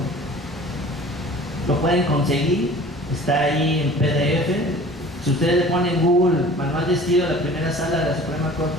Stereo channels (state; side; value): normal; both; correlation 0.45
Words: Lo pueden conseguir, está ahí en PDF. Si ustedes le ponen en Google manual de estilo de la primera sala de la Suprema